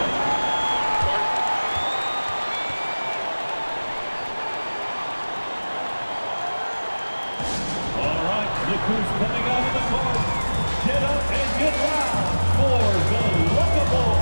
Look who's coming out of the court. Get up and get loud for the Lookable.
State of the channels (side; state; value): both; inverted; correlation -1.00